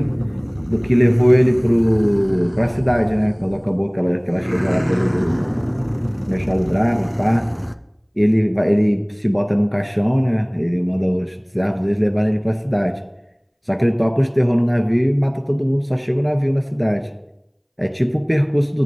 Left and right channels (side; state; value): both; identical; correlation 1.00